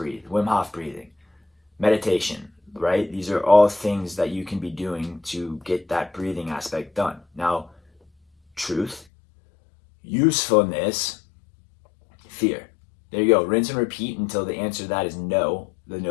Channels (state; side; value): drops out; right; at 9.1 s